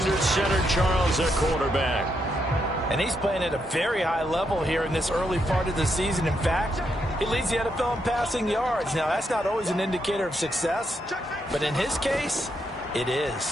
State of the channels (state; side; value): normal; both; correlation 0.79